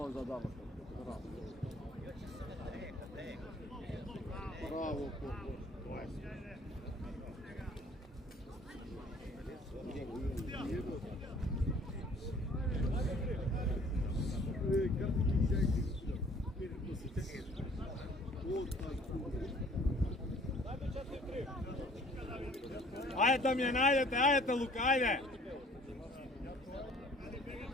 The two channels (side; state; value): both; normal; correlation 0.55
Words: за дамата. Bravo, Ајде Дамјан, ајдете Лука, ајде.